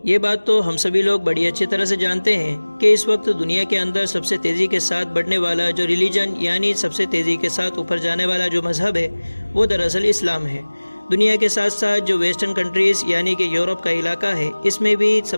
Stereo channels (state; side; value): inverted; both; correlation -1.00